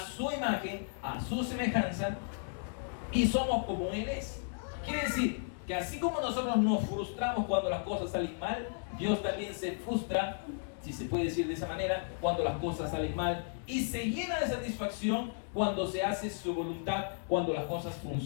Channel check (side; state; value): right; silent; 55 dB below the other